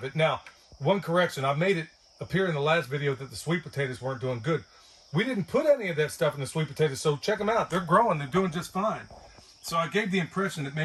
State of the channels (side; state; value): both; identical; correlation 1.00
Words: it. Now, one correction. I made it appear in the last video that the sweet potatoes weren't doing good. We didn't put any of that stuff in the sweet potatoes, so check them out. They're growing. They're doing just fine. So I gave the impression that